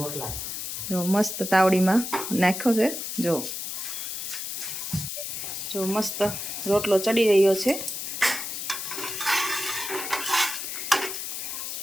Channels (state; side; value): noise; left; hiss, 5 dB below the sound